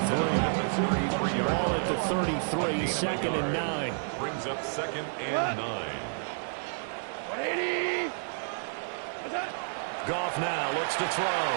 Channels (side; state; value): left; silent; digital silence